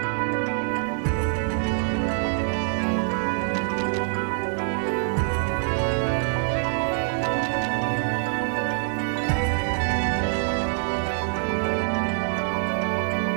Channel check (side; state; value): left; silent; 56 dB below the other